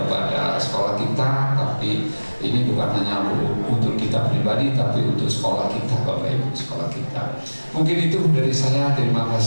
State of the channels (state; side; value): inverted; both; correlation -1.00